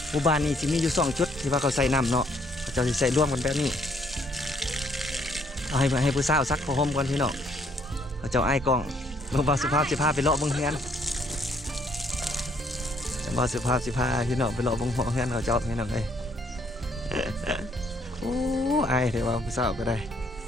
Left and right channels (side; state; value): both; normal; correlation 0.66